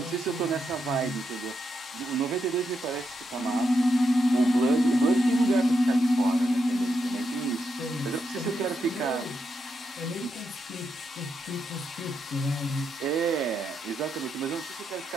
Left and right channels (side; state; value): both; normal; correlation 0.82